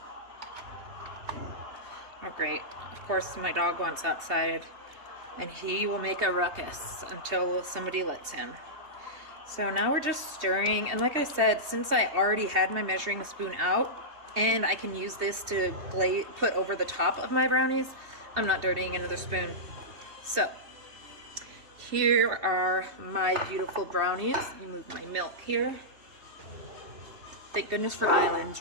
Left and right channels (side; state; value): left; late; 3.3 ms